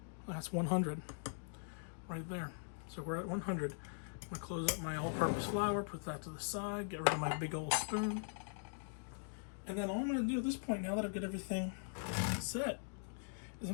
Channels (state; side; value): silent; right; digital silence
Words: That's 100 right there. So we're at 100. I'm going to close up my all-purpose flour, put that to the side, get rid of my big old spoon. And then all I'm going to do at this point, now that I've got everything set, is